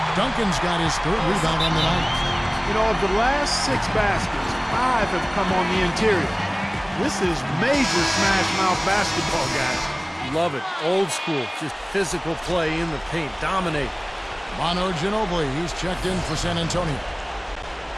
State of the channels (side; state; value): both; identical; correlation 1.00